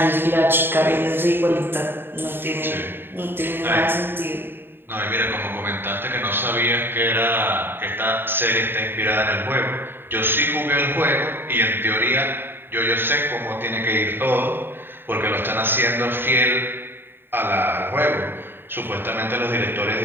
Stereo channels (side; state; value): left; late; 0.10 ms